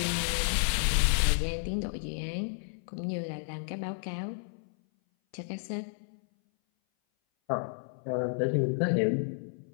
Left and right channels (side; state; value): right; silent; 57 dB below the other